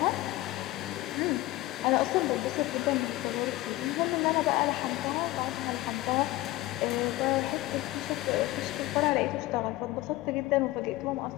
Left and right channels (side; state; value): right; quieter; 17.7 dB